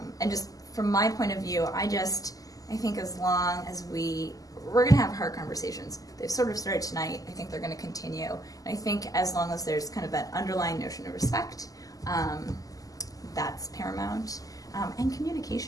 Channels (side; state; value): right; late; 0.17 ms